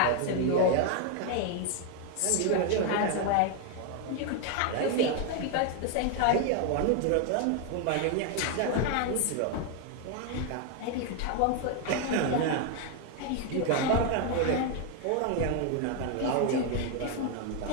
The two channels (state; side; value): different; both; correlation 0.01